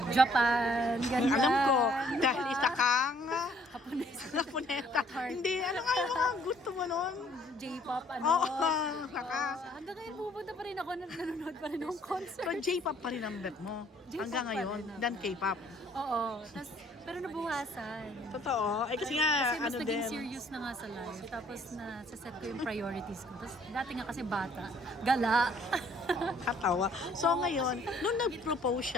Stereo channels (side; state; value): both; normal; correlation 0.61